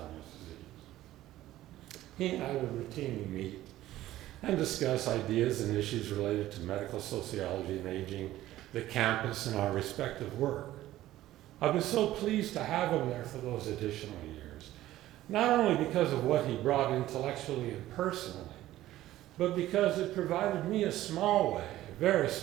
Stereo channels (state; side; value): quieter; left; 14.8 dB